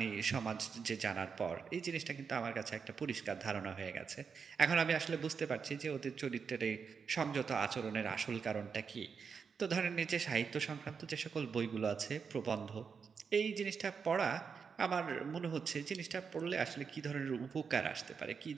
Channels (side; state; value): left; quieter; 6.0 dB